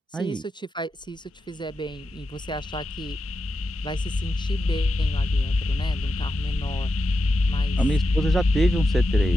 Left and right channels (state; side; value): normal; both; correlation 0.89